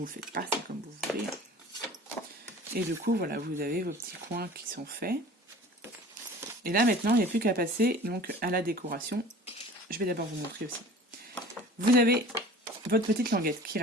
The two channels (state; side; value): normal; both; correlation 0.43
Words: le faites pas, c'est comme vous voulez. Et du coup voilà, vous avez vos petits coins qui sont faits. Et là maintenant il n'y a plus qu'à passer donc à la décoration. Je vais d'abord vous montrer aussi. Vous avez votre petite languette qui